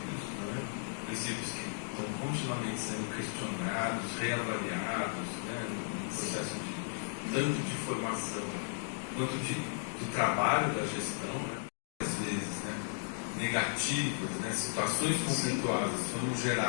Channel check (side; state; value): right; silent; digital silence